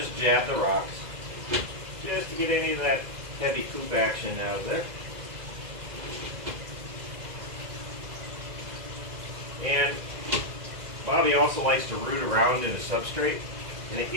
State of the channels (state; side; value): late; left; 2.0 ms